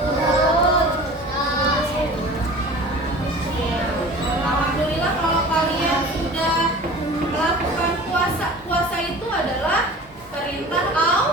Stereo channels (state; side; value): normal; both; correlation 0.40